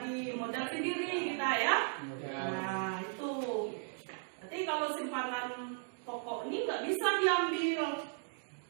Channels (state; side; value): silent; left; 54 dB below the other